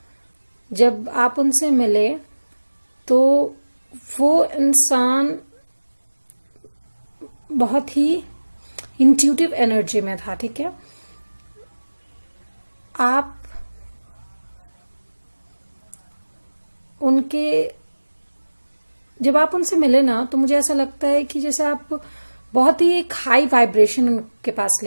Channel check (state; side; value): inverted; both; correlation -1.00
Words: जब आप उनसे मिले तो वो इंसान बहुत ही इंट्यूटिव एनर्जी में था, ठीक है। आप उनके जब आप उनसे मिले ना तो मुझे ऐसा लगता है कि जैसे आप बहुत ही एक हाई वाइब्रेशन उनके पास